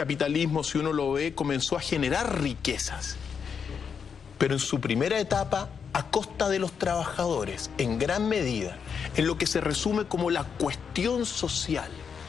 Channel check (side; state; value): right; quieter; 6.6 dB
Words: si uno lo ve, comenzó a generar riquezas. Pero en su primera etapa, a costa de los trabajadores, en gran medida, en lo que se resume como la cuestión social.